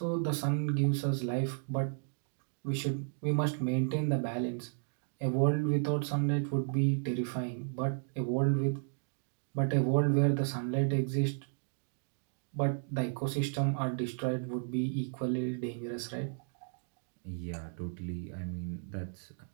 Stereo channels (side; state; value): left; silent; digital silence